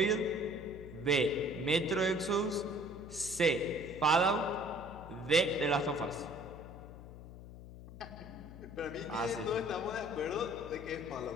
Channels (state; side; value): noise; left; hum, 14 dB below the sound